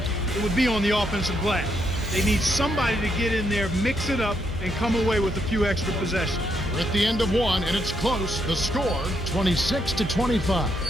it would be on the offensive glass. They need somebody to get in there, mix it up, and come away with a few extra possessions. We're at the end of one, and it's close. The score, 26-25.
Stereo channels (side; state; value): both; normal; correlation 0.77